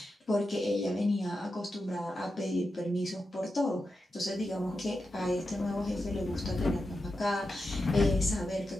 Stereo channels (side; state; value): both; normal; correlation 0.89